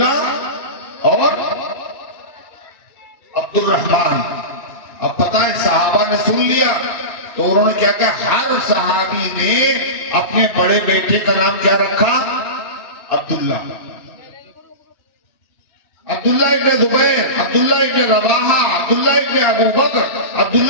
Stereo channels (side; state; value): right; late; 2.6 ms